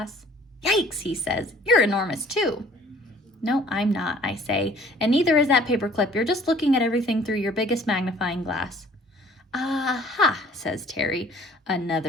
Yikes, he says. You're enormous, too. No, I'm not, I say. And neither is that paperclip. You're just looking at everything through your biggest magnifying glass. Aha, says Terry.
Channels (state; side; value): normal; both; correlation 0.54